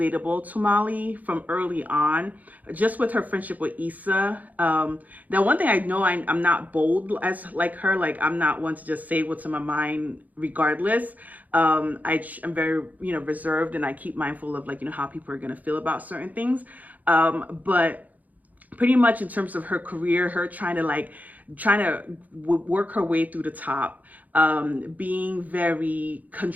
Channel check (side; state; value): left; late; 0.079 ms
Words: to Molly from early on, just with her friendship with Issa. Now, one thing I know, I'm not bold as like her. Like, I'm not one to just say what's in my mind regardless. I'm very, reserved, and I keep mindful of how people are going to feel about certain things. But pretty much in terms of her career, her trying to work her way through the top, being very